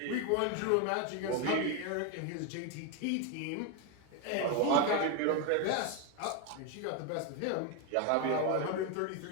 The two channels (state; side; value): different; both; correlation 0.01